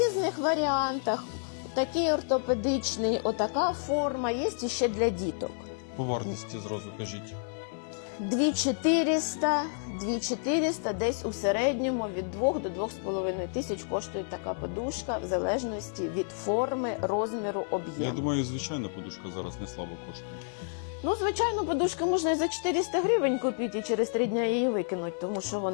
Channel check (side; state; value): right; silent; 58 dB below the other